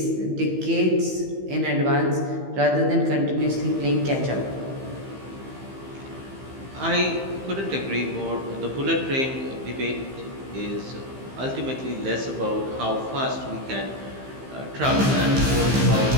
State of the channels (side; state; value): left; late; 15 ms